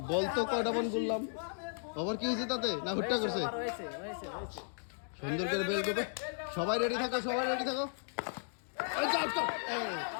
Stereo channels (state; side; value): silent; right; digital silence